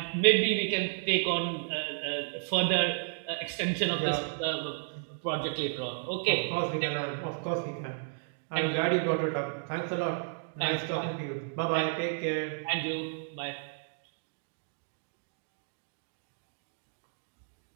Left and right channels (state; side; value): silent; left; digital silence